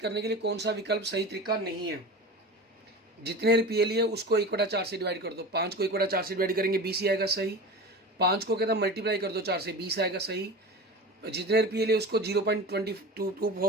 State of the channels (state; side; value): normal; both; correlation 0.31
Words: के लिए कौन सा विकल्प सही तरीका नहीं है, जितने रुपये लिए उसको 1/4 से डिवाइड कर दो, 5 को 1/4 से डिवाइड करेंगे 20 ही आएगा सही, 5 को कहता मल्टीप्लाई कर दो 4 से 20 आएगा सही, जितने रुपये लिए उसको